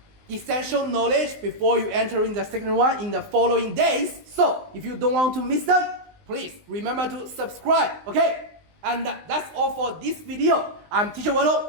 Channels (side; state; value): left; late; 19 ms